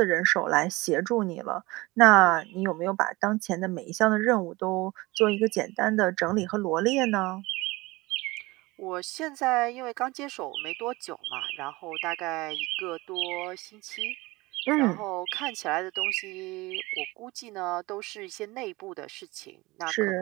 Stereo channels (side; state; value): left; quieter; 21.8 dB